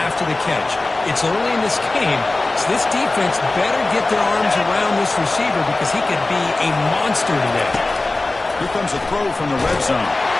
after the catch. It's early in this game, so this defense better get their arms around this receiver because he could be a monster today. Here comes a throw from the red zone.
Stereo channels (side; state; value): right; quieter; 3.1 dB